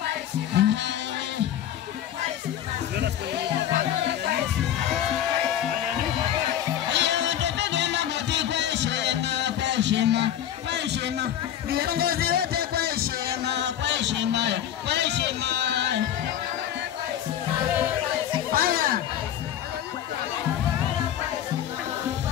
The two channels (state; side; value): quieter; right; 10.7 dB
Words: Viongozi wote kwa heshima, kwa heshima, kwa heshima. Haya.